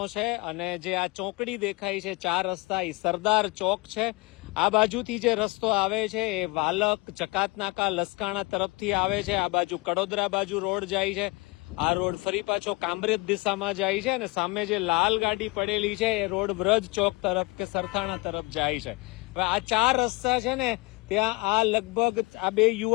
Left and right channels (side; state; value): right; quieter; 25.6 dB